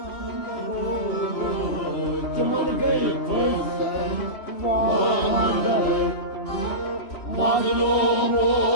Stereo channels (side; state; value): right; late; 2.8 ms